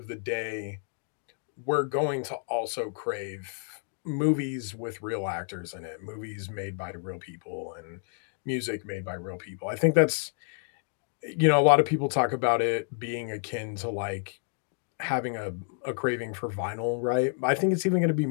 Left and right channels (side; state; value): right; silent; digital silence